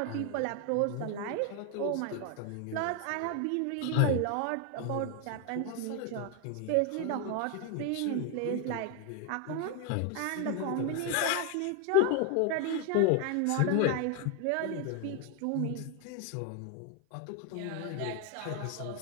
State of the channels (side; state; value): both; different; correlation 0.01